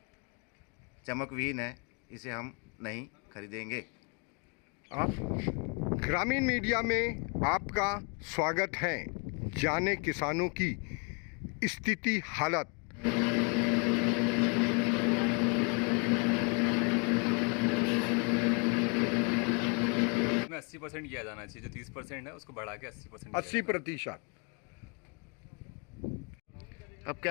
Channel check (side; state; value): right; quieter; 34.9 dB